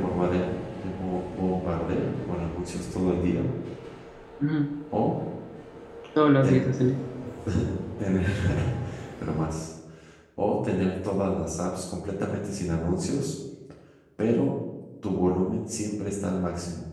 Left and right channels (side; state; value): both; identical; correlation 1.00